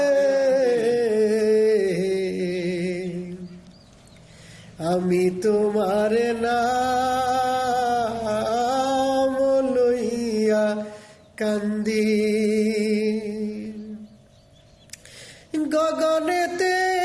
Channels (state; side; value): identical; both; correlation 1.00